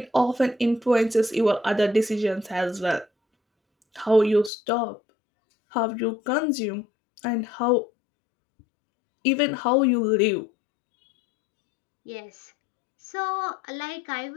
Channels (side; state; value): right; drops out; at 4.5 s